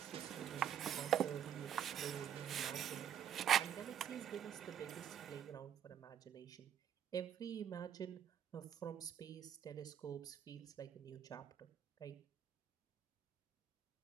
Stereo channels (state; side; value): quieter; left; 9.3 dB